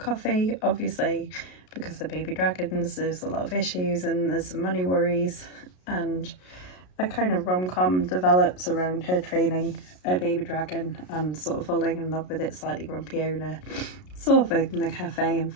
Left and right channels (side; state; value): right; late; 33 ms